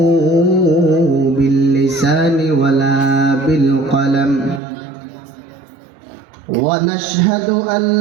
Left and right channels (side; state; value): left; drops out; at 4.6 s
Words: باللسان ولا بالقلم ونشهد أن